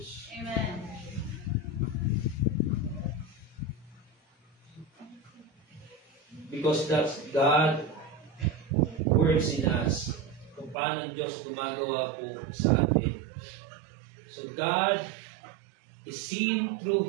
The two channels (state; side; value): drops out; left; at 10.8 s